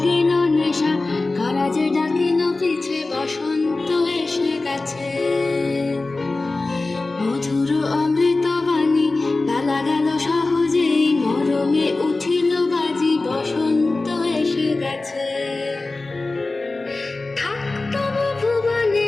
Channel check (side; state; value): right; quieter; 3.3 dB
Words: নেশা, কারা যে ডাকিল পিছে, বসন্ত এসে গেছে। মধুর অমৃত বাণী বেলা গেল সহজেই, মরমে উঠিল বাজি, বসন্ত এসে গেছে। থাকতব